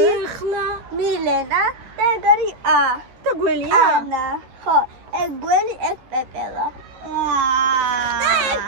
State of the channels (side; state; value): left; late; 12 ms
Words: მილენა და ეგ არის და გველია? ანა. ხო, ეგ გველი, ეგ პეპელა. და ეგ